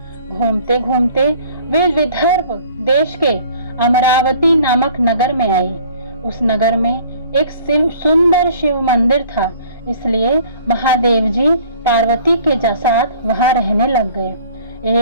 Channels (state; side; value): inverted; both; correlation -0.52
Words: घूमते घूमते वे विदर्भ देश के अमरावती नामक नगर में आए। उस नगर में एक सुंदर शिव मंदिर था, इसलिए महादेव जी पार्वती के साथ वहां रहने लग गए।